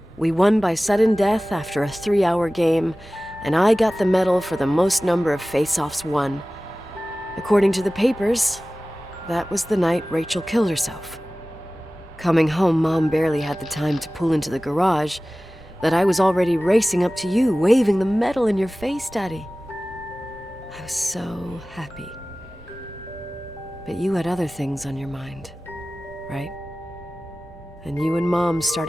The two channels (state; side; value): normal; both; correlation 0.97